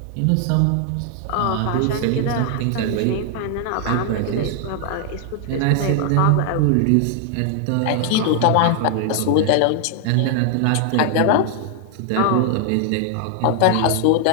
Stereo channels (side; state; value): both; different; correlation 0.00